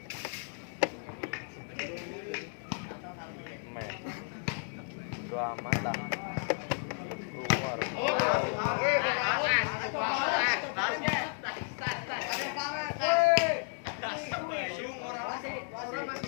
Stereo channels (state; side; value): silent; right; 56 dB below the other